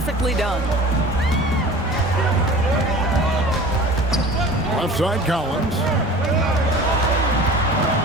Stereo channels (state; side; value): normal; both; correlation 0.41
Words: done. Left side Collins.